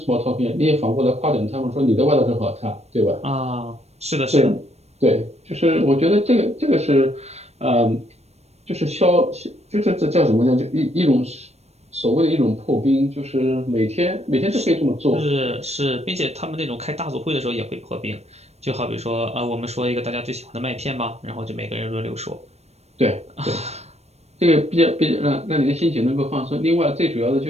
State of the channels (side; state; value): left; late; 0.31 ms